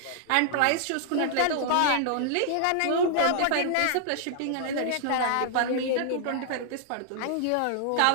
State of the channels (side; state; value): both; different; correlation -0.01